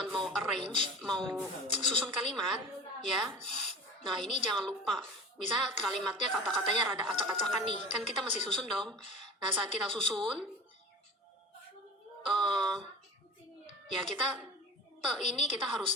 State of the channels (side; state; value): both; normal; correlation 0.35